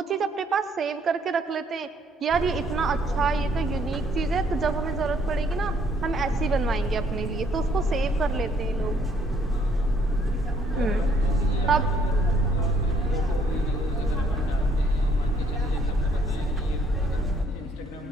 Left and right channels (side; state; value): both; normal; correlation 0.65